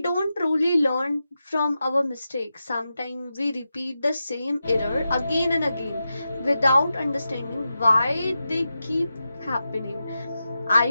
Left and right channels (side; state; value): both; inverted; correlation -0.90